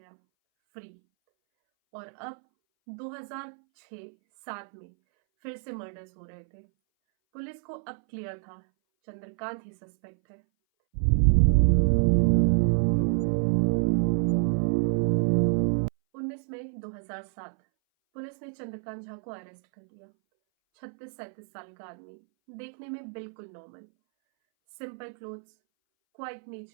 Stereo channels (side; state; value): left; silent; 59 dB below the other